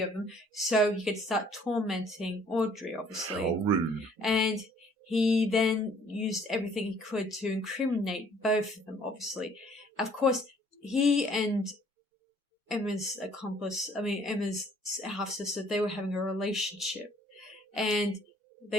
of them so he could start tormenting Audrey, obviously. How rude. And he then used everything he could to incriminate both of them, obviously. Of course, he and Emma's half-sister, they were having a relationship. And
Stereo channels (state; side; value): normal; both; correlation 0.59